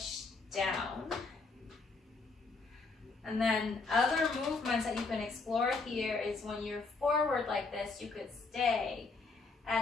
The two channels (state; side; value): quieter; right; 4.0 dB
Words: down. And then other movements that you can explore here is when you're forward like this, you could stay